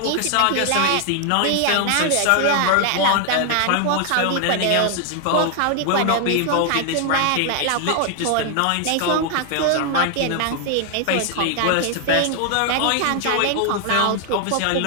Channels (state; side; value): different; both; correlation 0.00